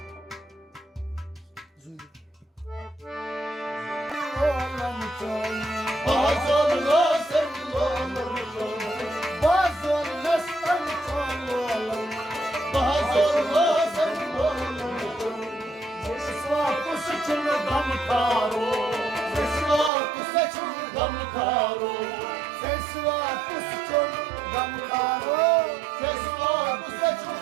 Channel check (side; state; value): left; drops out; at 19.9 s